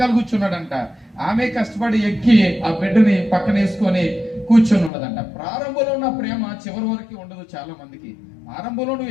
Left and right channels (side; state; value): right; drops out; at 4.9 s